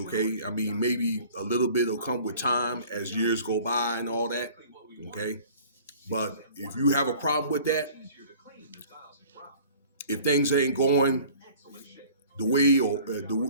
I mean, maybe a little bit will come with time as years go by and all that, okay? But if you have a problem with that, if things ain't going the way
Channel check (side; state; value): both; inverted; correlation -0.48